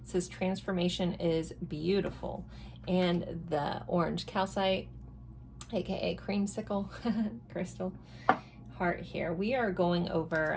says transformation is beautiful. And the orange calcite, aka creamsicle crystal heart here. We are going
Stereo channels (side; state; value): both; identical; correlation 1.00